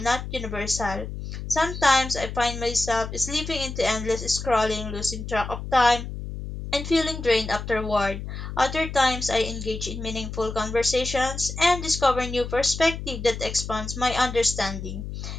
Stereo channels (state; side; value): noise; left; hum, 7 dB below the sound